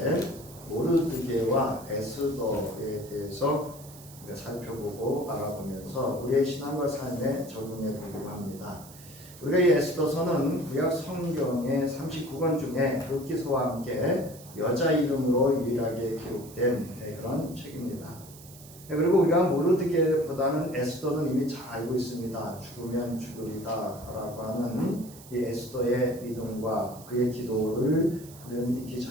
모르드게와 에스더에 대해서 우리가 살펴보고 알아보면서 우리의 신앙과 삶에 적용해 보려고 합니다. 우리가 이 에스더서는 구약 성경의 39권 중에 룻기서와 함께 여자 이름으로 유일하게 기록된 그런 책입니다. 그리고 우리가 모르드게보다는 에스더는 이미 잘 알고 있습니다. 죽으면 죽으리다 라고 하는 이 에스더의 믿음과 그의 기도를 우리는 익히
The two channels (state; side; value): noise; right; hiss, 19 dB below the sound